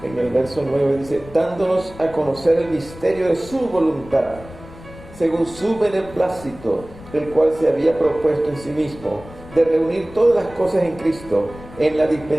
En el verso 9 dice, dándonos a conocer el misterio de su voluntad, según su beneplácito, el cual se había propuesto en sí mismo, de reunir todas las cosas en Cristo, en la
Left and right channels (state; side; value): noise; left; rumble, 18 dB below the sound